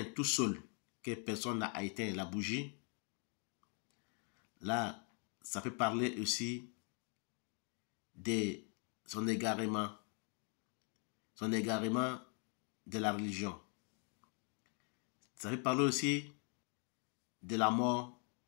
tout seul, que personne n'a éteint la bougie, là, ça peut parler aussi de son égarement de la religion. Ça peut parler aussi de la mort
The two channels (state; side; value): quieter; right; 36.7 dB